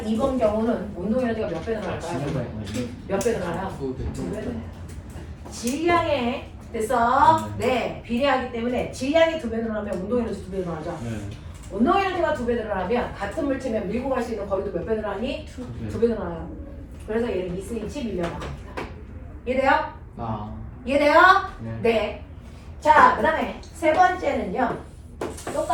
2번 경우는 운동 에너지가 몇 배 늘어날까요? 몇 배 늘어나요? 2배 늘어나요. 질량에 됐어? 네, 비례하기 때문에 질량이 2배 늘어나면 운동 에너지 2배 늘어나죠. 네. 운동 에너지가 2배 늘어나면 같은 물체면 밀고 갈 수 있는 거리도 몇 배 늘어나니? 2배 늘어나요. 그래서 얘는 2cm 밀려나갑니다. 이해돼요? 아, 이해돼요? 네. 네. 자, 그 다음에 세 번째는요.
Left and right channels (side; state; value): both; identical; correlation 1.00